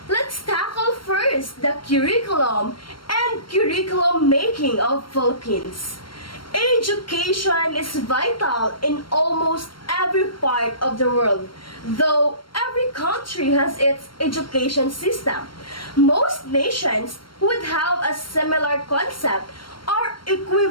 Let's tackle first the curriculum and curriculum making of Philippines. Education is vital in almost every part of the world, though every country has its education system. Most nations would have a similar concept or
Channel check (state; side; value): late; right; 0.73 ms